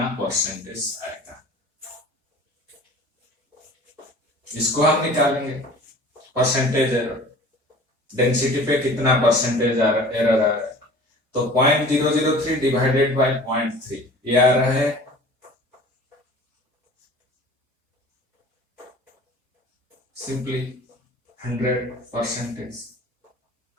परसेंटेज आएगा इसको हम निकालेंगे. परसेंटेज एरर, डेंसिटी पे कितना परसेंटेज एरर आ रहा है. तो 0.003 डिवाइडेड बाय 0.3 ये आ रहा है simply 100%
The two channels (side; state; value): both; normal; correlation 0.44